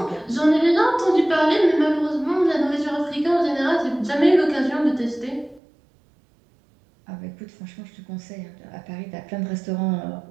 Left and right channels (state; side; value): drops out; left; at 5.6 s